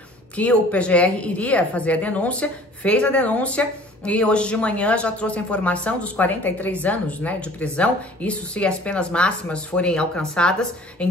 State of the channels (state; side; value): normal; both; correlation 0.49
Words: que o PGR iria fazer a denúncia, fez a denúncia e hoje de manhã já trouxe a informação dos 43 anos, né, de prisão, isso se as penas máximas forem alcançadas